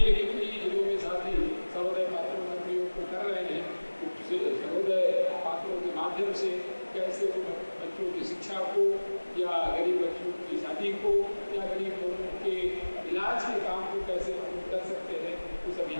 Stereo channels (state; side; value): inverted; both; correlation -1.00